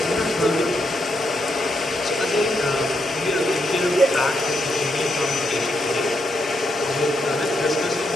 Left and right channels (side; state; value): both; normal; correlation 0.80